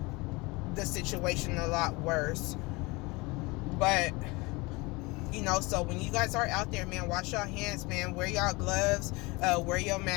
the situation a lot worse. But, so when you guys are out there, man, wash your hands, man. Wear your gloves, wear your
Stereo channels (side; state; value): right; quieter; 24.7 dB